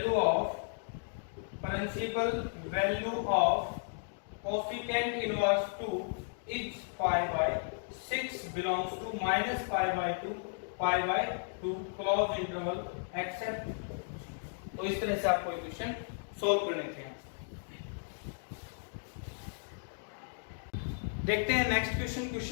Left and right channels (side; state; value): right; silent; digital silence